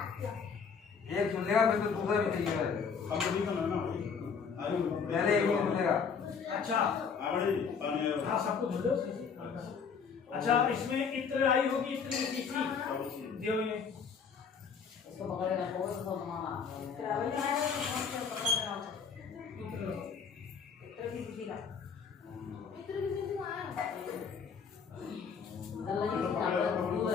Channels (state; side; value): quieter; right; 6.1 dB